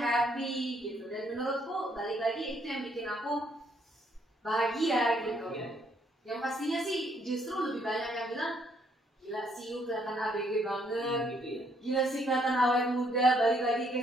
gitu. Dan menurutku balik lagi itu yang bikin aku bahagia gitu. Yang pastinya sih justru lebih banyak yang bilang gila sih you kelihatan ABG banget gitu ya. Gila sih kelihatan awet muda, balik lagi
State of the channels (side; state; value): both; normal; correlation 0.69